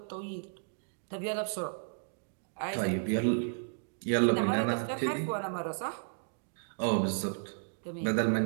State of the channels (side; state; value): left; silent; digital silence